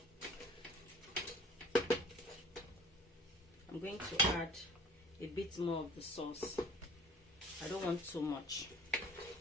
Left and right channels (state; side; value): normal; both; correlation 0.48